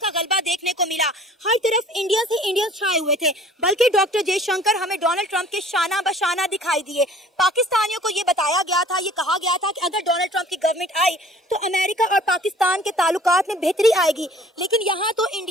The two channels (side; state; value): both; normal; correlation 0.51